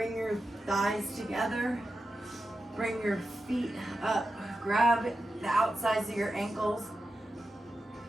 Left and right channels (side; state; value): both; normal; correlation 0.91